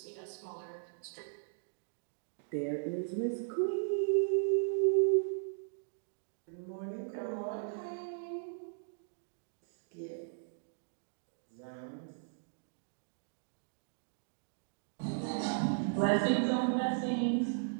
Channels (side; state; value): left; silent; digital silence